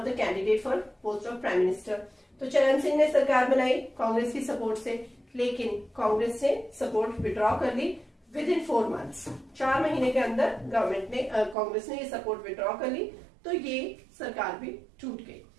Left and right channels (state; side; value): drops out; left; at 11.6 s